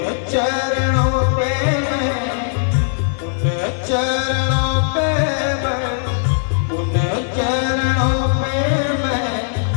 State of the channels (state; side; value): silent; right; digital silence